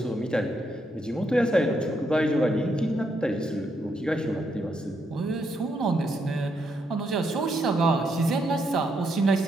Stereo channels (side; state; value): both; normal; correlation 0.78